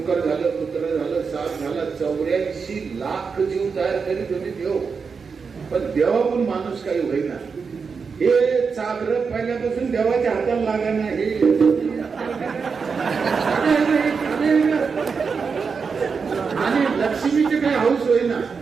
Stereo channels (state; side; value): quieter; left; 5.4 dB